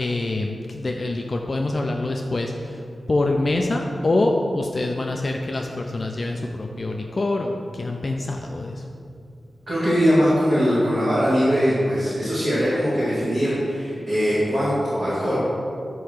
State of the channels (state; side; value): normal; both; correlation 0.94